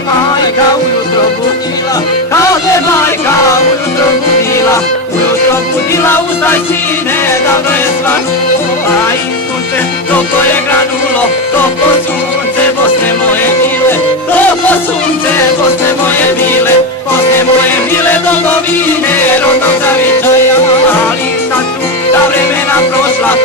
ujutro budila, ustaj sine, davno je svanulo, a i sunce toplo je granulo, toplo sunce Bosne moje mile, toplo sunce Bosne moje mile, Bosne moje mile domovine, rodnog zavičaja. Ali sad su ta vremena prošla,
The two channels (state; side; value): normal; both; correlation 0.13